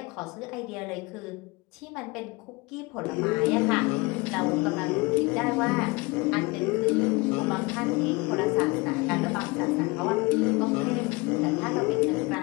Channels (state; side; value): quieter; right; 25.3 dB